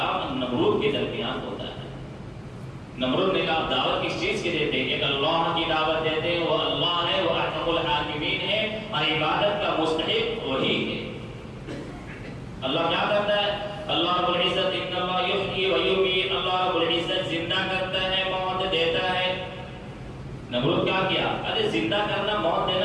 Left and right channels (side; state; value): both; identical; correlation 1.00